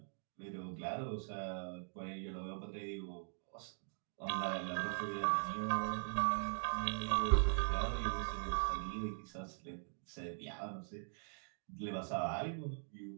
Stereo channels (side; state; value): left; silent; digital silence